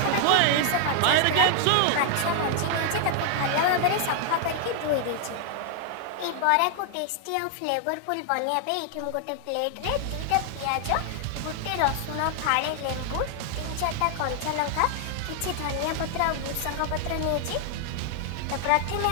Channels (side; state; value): both; different; correlation 0.00